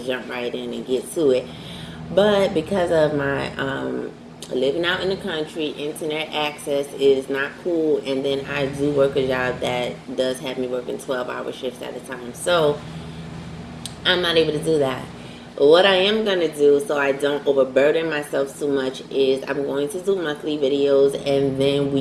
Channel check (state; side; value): identical; both; correlation 1.00